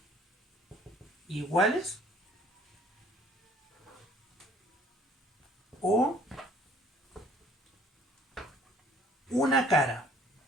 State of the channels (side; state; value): both; normal; correlation 0.57